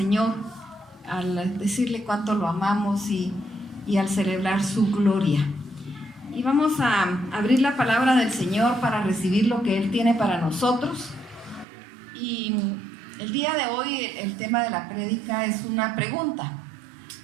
al decirle cuánto lo amamos y al celebrar su gloria. Y vamos a abrir la palabra del Señor para recibir lo que Él tiene para nosotros. Y el día de hoy el tema de la prédica es una pregunta.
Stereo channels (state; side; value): drops out; left; at 11.7 s